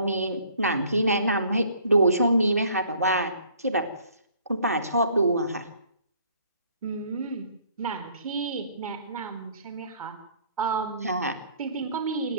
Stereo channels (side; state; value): both; inverted; correlation -0.59